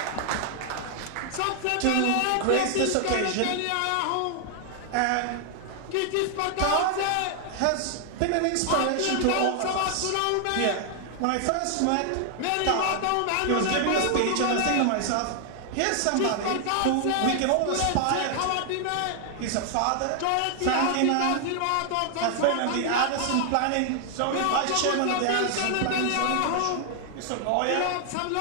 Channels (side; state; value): both; different; correlation 0.00